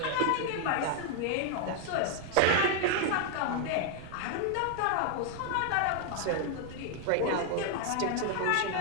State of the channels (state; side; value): different; both; correlation 0.00